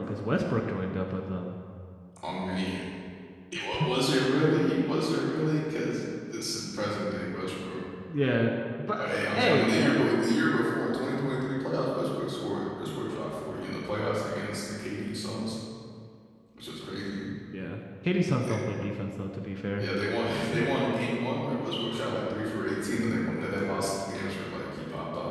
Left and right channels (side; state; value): both; identical; correlation 1.00